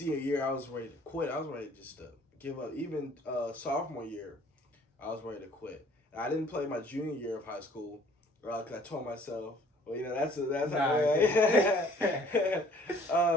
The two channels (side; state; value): both; normal; correlation 0.56